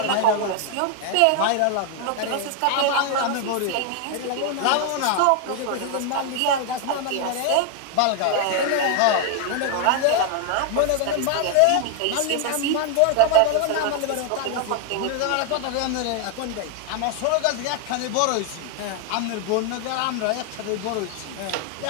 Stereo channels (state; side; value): different; both; correlation 0.00